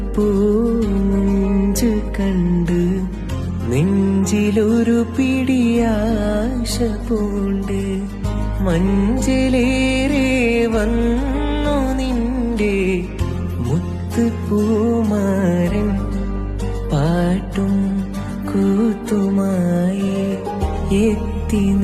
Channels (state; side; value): identical; both; correlation 1.00